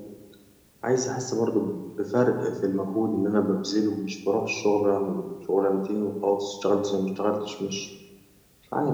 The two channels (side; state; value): both; identical; correlation 1.00